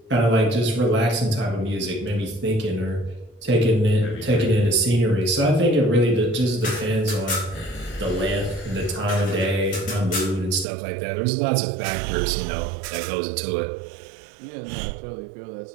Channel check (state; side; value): drops out; left; at 10.7 s